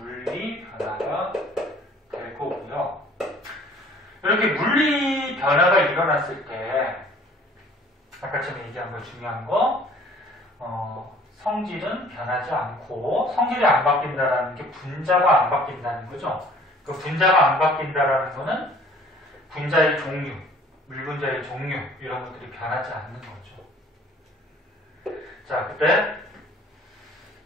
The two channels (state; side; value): normal; both; correlation 0.54